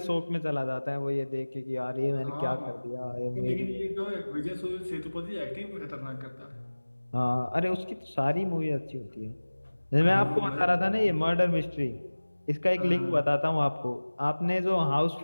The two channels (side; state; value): both; inverted; correlation -1.00